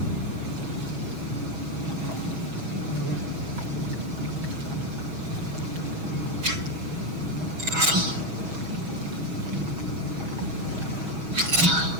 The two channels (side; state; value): left; late; 6.2 ms